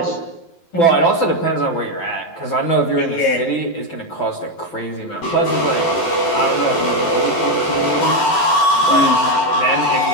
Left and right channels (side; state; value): right; late; 11 ms